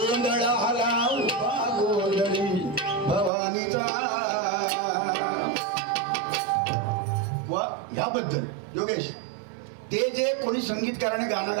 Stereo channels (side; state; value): left; drops out; at 3.3 s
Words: आला उभा गोंधळी भवानीचा वा ह्याबद्दल योगेश ते जे कोणी संगीतकाराने गाणं